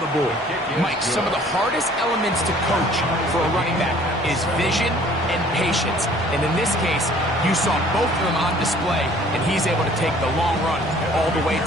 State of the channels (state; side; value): normal; both; correlation 0.54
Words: board. Mike, some of the hardest elements to coach for a running back is vision and patience. And in this case, you saw both of them on display, and he's able to take the long run all the way